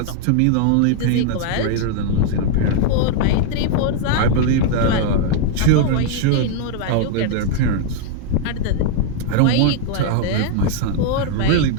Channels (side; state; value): both; different; correlation -0.01